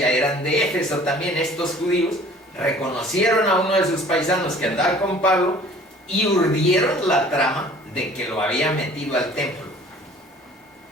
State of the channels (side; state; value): both; normal; correlation 0.50